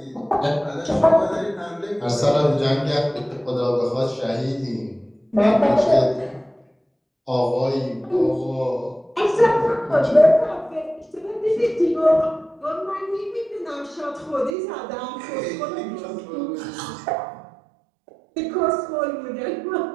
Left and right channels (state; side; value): drops out; left; at 14.6 s